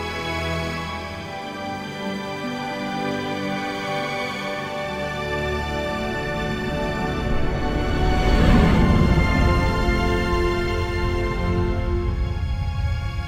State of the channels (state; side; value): identical; both; correlation 1.00